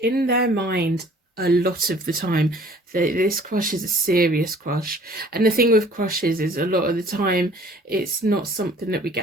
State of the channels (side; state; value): both; normal; correlation 0.53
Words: in their mind a lot of the time. This crush is a serious crush, and the thing with crushes is a lot of the time it's not something that we